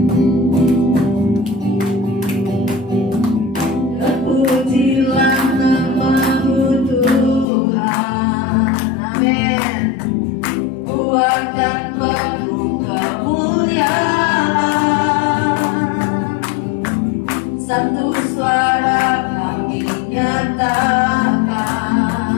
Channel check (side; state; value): right; drops out; at 7.5 s